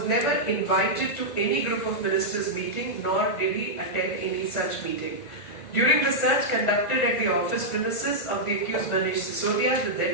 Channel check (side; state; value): right; late; 1.9 ms